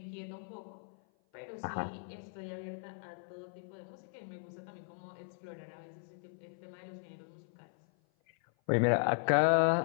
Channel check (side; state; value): right; silent; 53 dB below the other